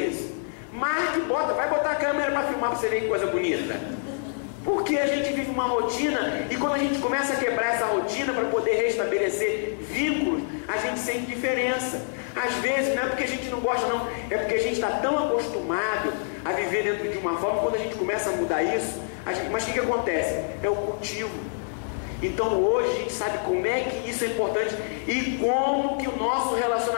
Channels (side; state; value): right; silent; digital silence